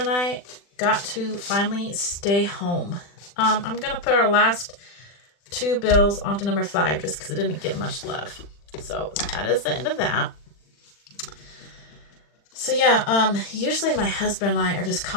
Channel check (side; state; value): right; late; 40 ms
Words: and I got to finally stay home. I'm going to put our last 2 bills onto number 5 just because it didn't get much love. So that is the end of that. So yeah, usually my husband and I are just